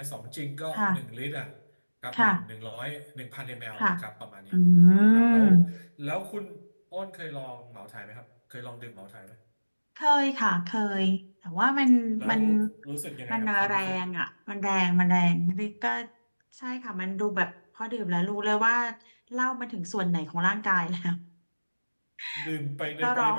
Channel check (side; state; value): both; inverted; correlation -1.00